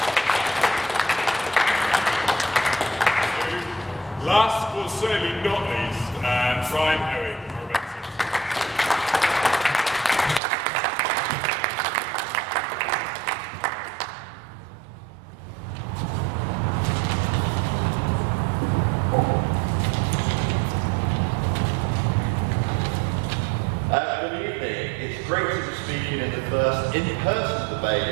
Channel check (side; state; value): left; drops out; at 10.4 s